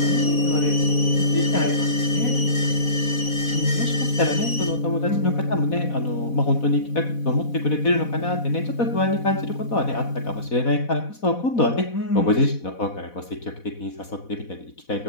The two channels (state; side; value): late; right; 4.1 ms